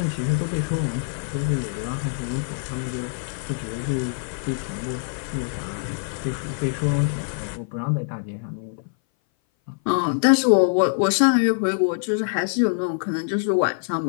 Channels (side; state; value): right; silent; 58 dB below the other